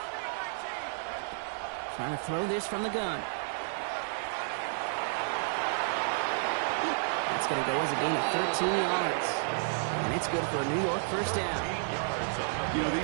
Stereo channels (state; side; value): silent; left; 57 dB below the other